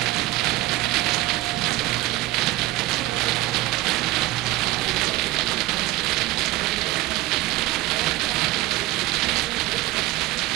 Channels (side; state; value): left; quieter; 17.9 dB